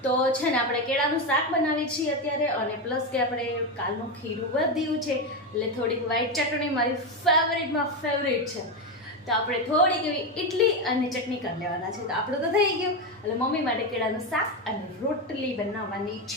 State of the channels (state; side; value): normal; both; correlation 0.12